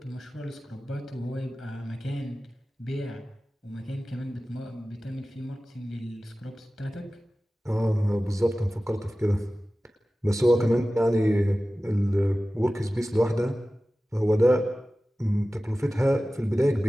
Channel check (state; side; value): normal; both; correlation 0.96